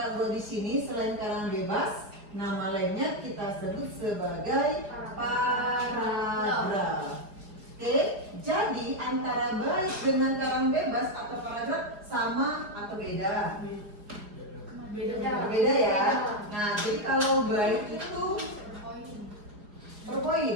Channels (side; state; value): left; late; 4.8 ms